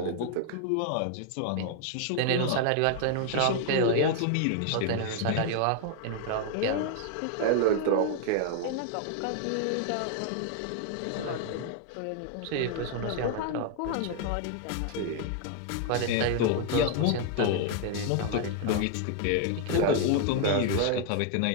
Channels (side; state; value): both; different; correlation 0.00